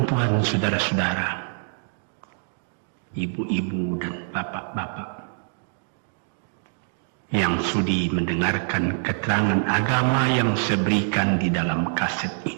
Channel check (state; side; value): silent; left; 62 dB below the other